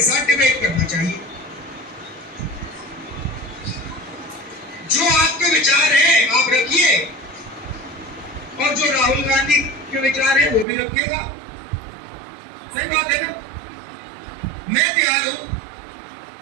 साथ डिबेट करना चाहिए। जो आपके विचार हैं आप रखिए और जो राहुल गांधी के विचार हैं वो भी रखेगा। सही बात है ना? मैं तैयार हूं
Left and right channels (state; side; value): drops out; left; at 10.7 s